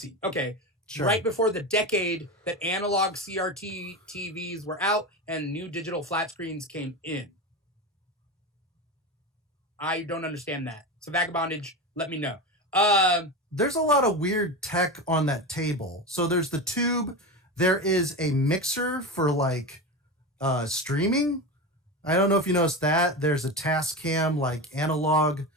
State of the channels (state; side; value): normal; both; correlation 0.22